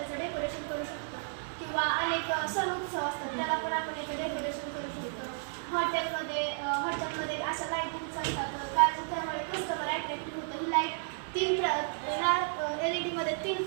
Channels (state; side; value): silent; left; digital silence